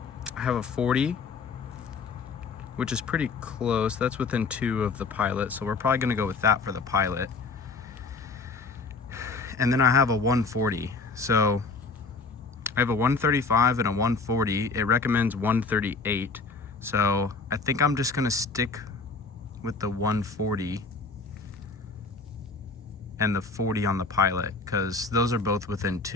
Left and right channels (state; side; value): quieter; right; 4.1 dB